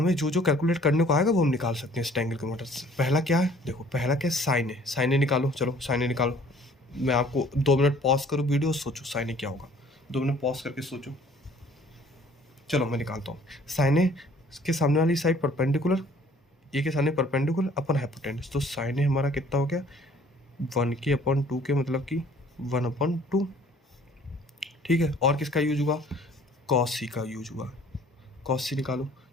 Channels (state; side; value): normal; both; correlation 0.55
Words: जो जो कैलकुलेट करने को आएगा वो हम निकाल सकते हैं इस ट्रायंगल की मदद से। पहला क्या है, देखो पहला क्या है, साइन है। साइन ए निकालो, चलो साइन ए निकालो। मैं आपको 2 मिनट पॉज करूँ वीडियो, सोचो साइन ए क्या होगा, 2 मिनट पॉज करके सोचो। चलो मैं निकालता हूँ। साइन ए के सामने वाली साइड परपेंडिकुलर, ए के सामने परपेंडिकुलर अपन हाइपोटेनस, तो साइन ए हमारा कितना हो गया, 1k/2k मतलब कि 1/2, ठीक है। और किसका यूज हुआ, कॉस सी का यूज हुआ। कॉस सी निकालो,